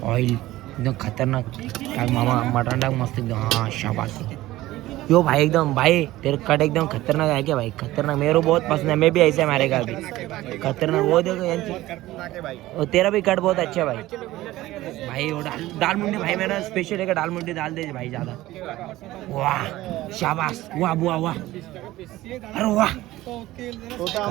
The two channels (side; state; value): left; quieter; 16.7 dB